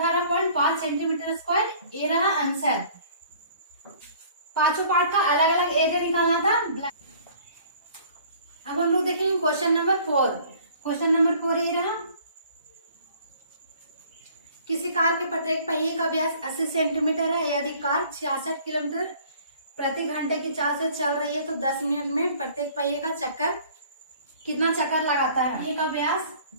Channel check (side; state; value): both; inverted; correlation -0.53